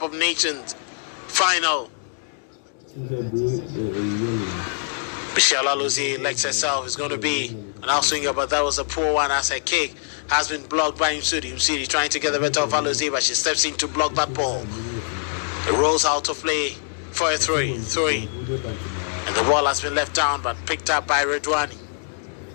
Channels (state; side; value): silent; right; digital silence